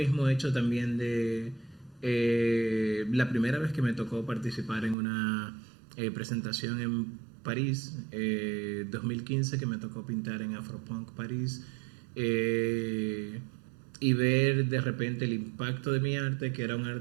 hecho también de la primera vez que me tocó participar en una presentación en París, 2015, que me tocó pintar en Afropunk París, y ver de repente el impacto de mi arte, que era un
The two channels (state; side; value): drops out; left; at 5.0 s